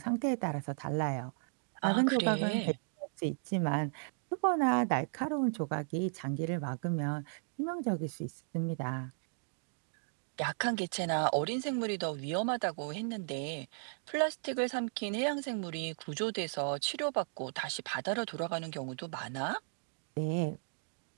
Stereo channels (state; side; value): silent; left; digital silence